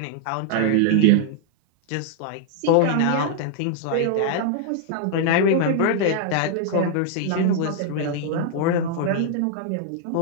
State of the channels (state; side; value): different; both; correlation -0.01